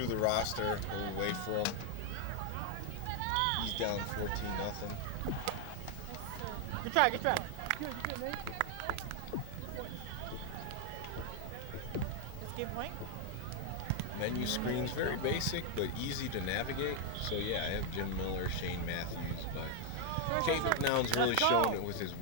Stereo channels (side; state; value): both; different; correlation 0.00